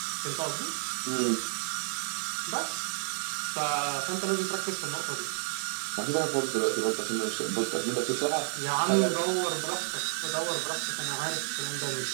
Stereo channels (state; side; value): silent; left; digital silence